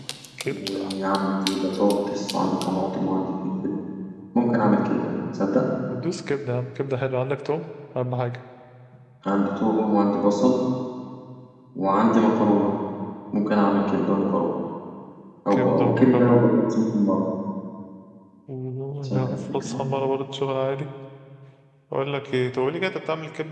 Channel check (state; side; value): identical; both; correlation 1.00